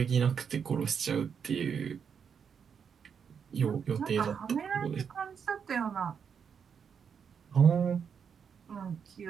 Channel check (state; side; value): quieter; left; 6.9 dB